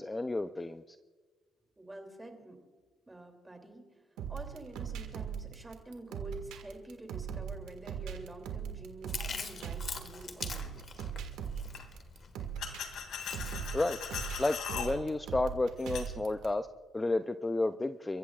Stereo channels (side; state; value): both; normal; correlation 0.83